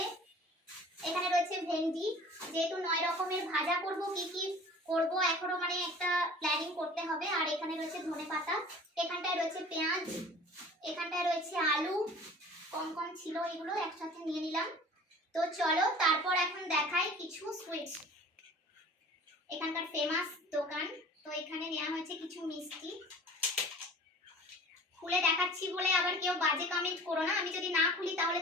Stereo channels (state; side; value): normal; both; correlation 0.45